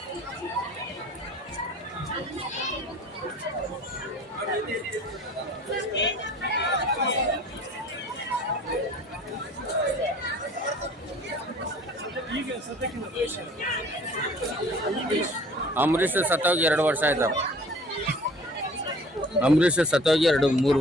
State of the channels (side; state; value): both; normal; correlation 0.49